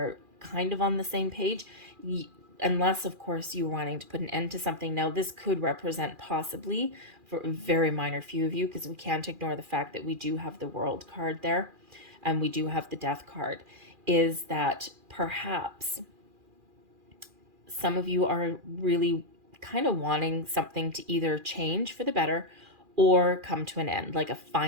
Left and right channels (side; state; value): left; late; 2.4 ms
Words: kind of on the same page. Unless, of course, you're wanting to put an end to something. Now, this could represent possibly for a very minor few of you, because we can't ignore the fact that we do have the World card there and we do have the Death card, is that perhaps some of you are really kind of wanting something to either change for the better or come to an end, like a